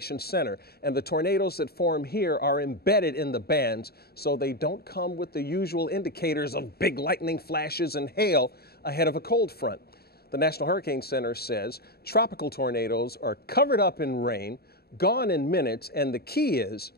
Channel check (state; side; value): late; right; 0.46 ms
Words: center, and the tornadoes that form here are embedded in the bands, so they don't come with the usual indicators of big lightning flashes and hail ahead of a cold front. The National Hurricane Center says tropical tornadoes are covered up in rain, gone in minutes, and the key is